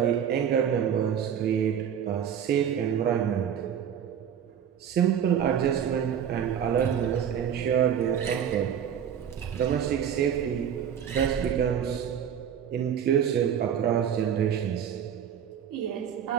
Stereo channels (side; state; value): left; quieter; 8.7 dB